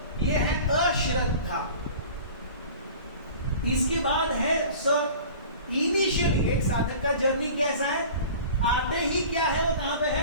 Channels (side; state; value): both; inverted; correlation -0.41